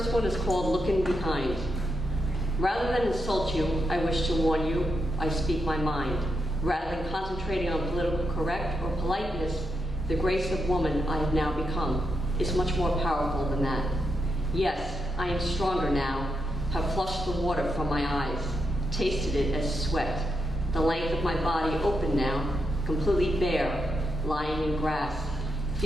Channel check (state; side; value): normal; both; correlation 0.83